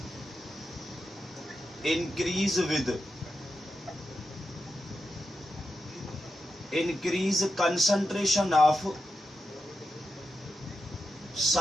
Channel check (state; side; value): normal; both; correlation 0.87